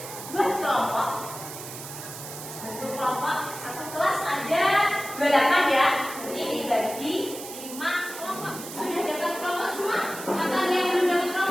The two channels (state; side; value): noise; right; hiss, 11 dB below the sound